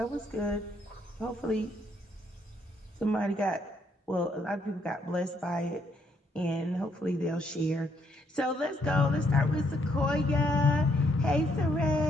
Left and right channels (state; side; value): normal; both; correlation 0.72